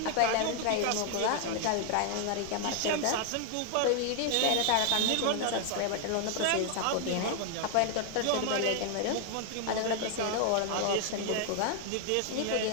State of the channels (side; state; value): both; different; correlation 0.00